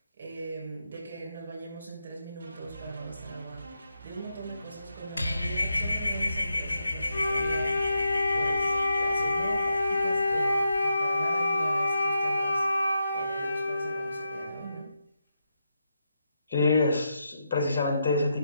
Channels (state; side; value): inverted; both; correlation -0.84